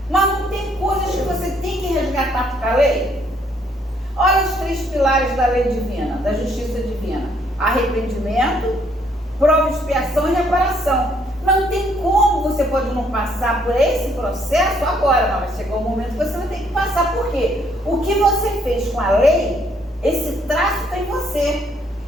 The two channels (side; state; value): both; normal; correlation 0.68